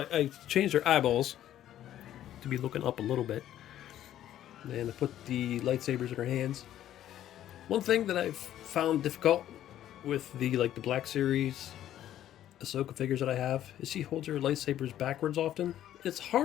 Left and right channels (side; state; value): right; quieter; 12.0 dB